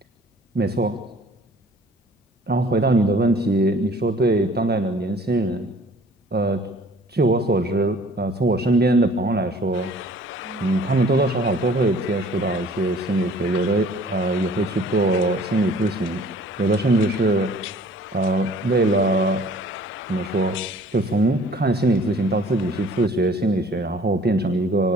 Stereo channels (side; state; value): both; normal; correlation 0.52